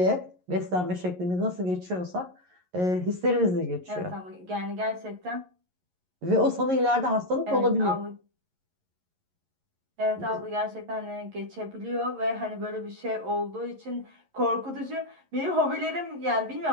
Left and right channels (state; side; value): late; left; 11 ms